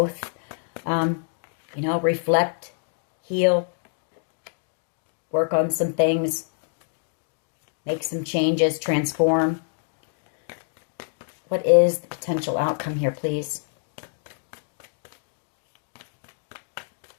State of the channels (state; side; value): silent; right; digital silence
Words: you know, reflect, heal, work on some things, make some changes, transform. What is the potential outcome here, please?